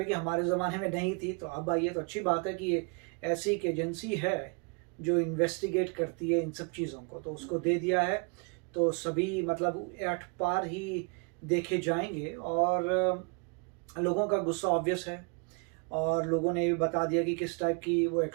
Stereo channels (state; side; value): quieter; left; 34.7 dB